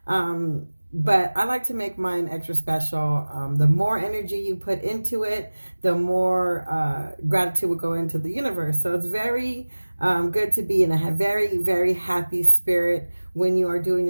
but I like to make mine extra special. The more energy you put into it, the more gratitude will go into the universe. So it's very good to be in a very, very happy spirit when you are doing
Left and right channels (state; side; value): inverted; both; correlation -1.00